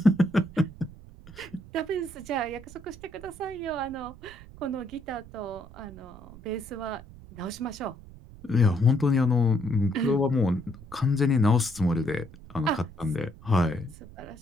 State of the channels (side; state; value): right; noise; rumble, 18 dB below the sound